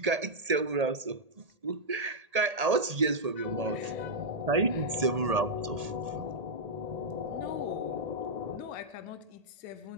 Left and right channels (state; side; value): late; left; 1.8 ms